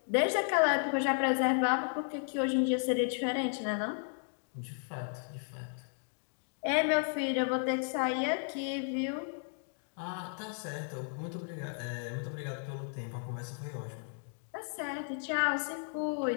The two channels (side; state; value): right; silent; 55 dB below the other